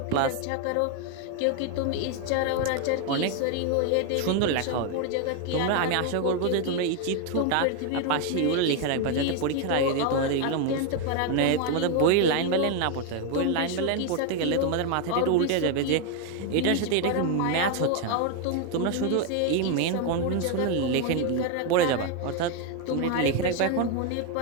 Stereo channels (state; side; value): different; both; correlation 0.01